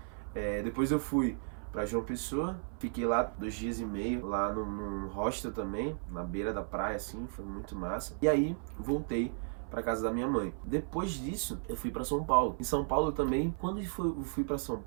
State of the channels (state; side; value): silent; left; 55 dB below the other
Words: depois eu fui pra João Pessoa, fiquei lá 2 dias e meio, lá num hostel também, na beira da praia, assim, foi muito massa. E aí, voltei pra casa da minha mãe. Depois disso, eu fui pra São Paulo. Em São Paulo também, quando eu fui pra São